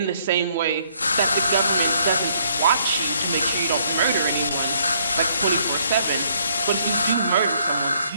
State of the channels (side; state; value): both; inverted; correlation -0.67